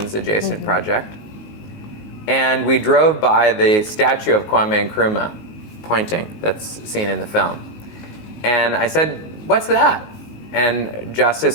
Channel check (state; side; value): late; right; 19 ms